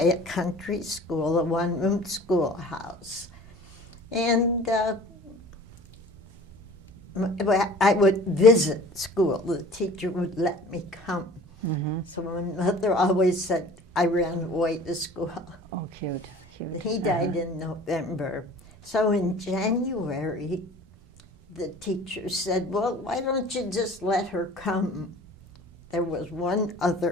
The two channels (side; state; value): both; normal; correlation 0.45